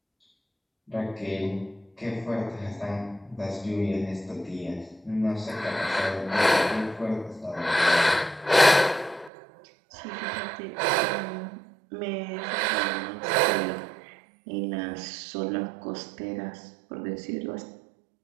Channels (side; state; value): left; drops out; at 9.3 s